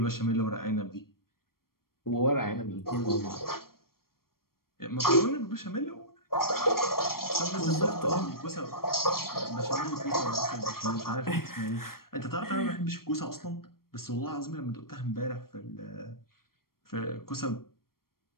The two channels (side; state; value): right; late; 0.93 ms